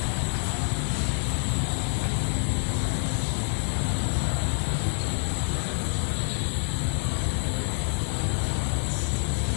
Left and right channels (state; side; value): silent; right; 58 dB below the other